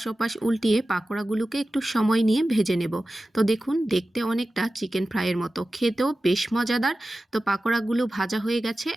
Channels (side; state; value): both; normal; correlation 0.95